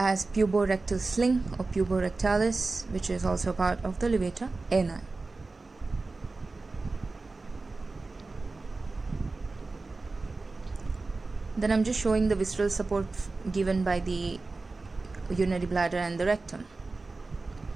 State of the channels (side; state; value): left; quieter; 3.6 dB